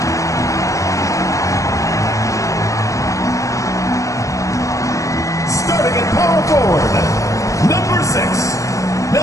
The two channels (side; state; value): right; late; 0.16 ms